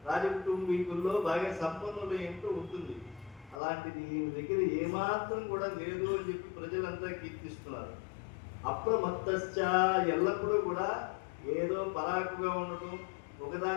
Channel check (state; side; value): drops out; right; at 3.6 s